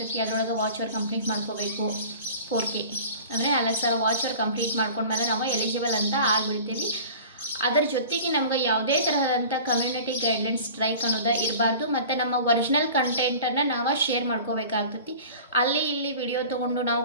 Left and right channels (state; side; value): inverted; both; correlation -0.41